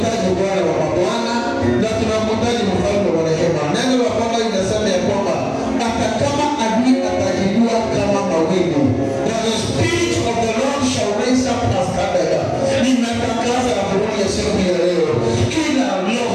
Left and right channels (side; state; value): both; identical; correlation 1.00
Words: Bwana wa mabwana na tunamhitaji mfalme wa rehema. Neno la Bwana linasema ya kwamba hata kama adui atajinua kama mawingu, the Spirit of the Lord shall raise up a standard. Ninatangaza habari ya siku ya leo, kila